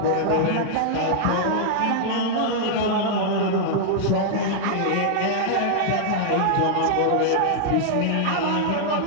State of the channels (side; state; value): both; different; correlation -0.01